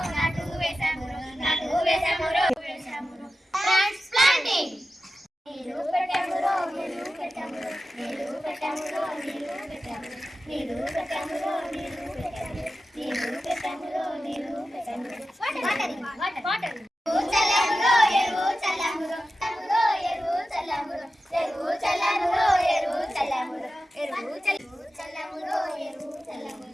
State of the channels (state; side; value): normal; both; correlation 0.93